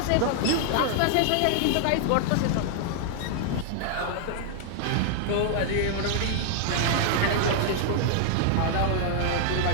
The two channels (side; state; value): both; different; correlation 0.00